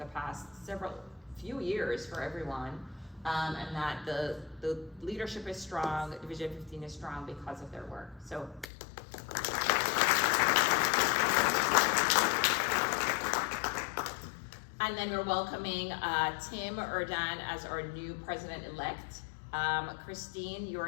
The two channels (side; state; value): right; drops out; at 8.7 s